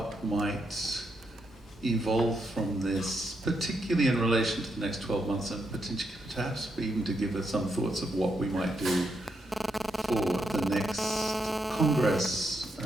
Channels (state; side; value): normal; both; correlation 0.80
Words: might evolve from this, particularly in relation to the next 12 months, and potentially perhaps even to give us some thoughts of what we might do for the next Congress